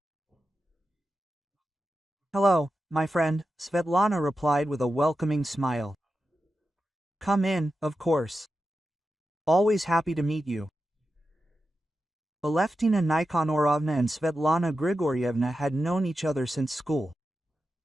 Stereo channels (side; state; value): both; normal; correlation 0.90